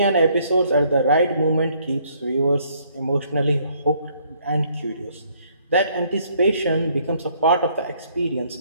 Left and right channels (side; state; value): both; inverted; correlation -0.65